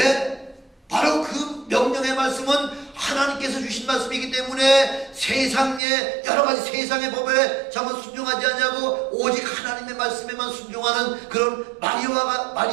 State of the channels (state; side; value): drops out; left; at 5.8 s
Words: 바로 그 명령의 말씀은 하나님께서 주신 말씀이기 때문에 세상의 여러 가지 세상의 법에 전부 순종하지 않냐고 오직 하나님의 말씀에만 순종하는 그런